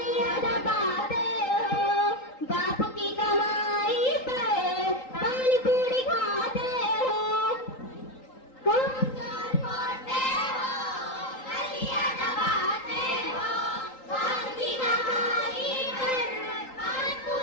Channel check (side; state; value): right; late; 3.8 ms